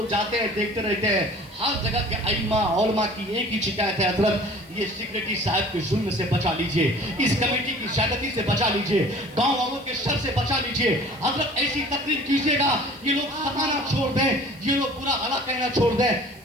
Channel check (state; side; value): noise; right; hiss, 27 dB below the sound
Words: जाते हैं, देखते रहते हैं, हर जगह के अइम्मा उलमा की एक ही शिकायत है, हजरत ये सेक्रेटरी साहब के जुल्म से बचा लीजिए, इस कमेटी की ज्यादती से बचा लीजिए, गांव वालों के शर से बचा लीजिए। हजरत ऐसी तकरीर कीजिएगा ये लोग सताना छोड़ दें, ये लोग बुरा भला कहना छोड़ दें।